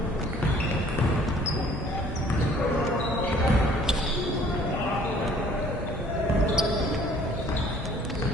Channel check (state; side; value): normal; both; correlation 0.56